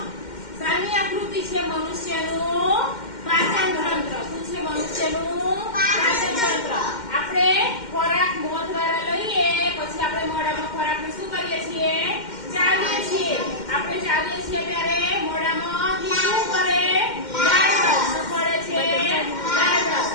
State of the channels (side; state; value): right; late; 2.1 ms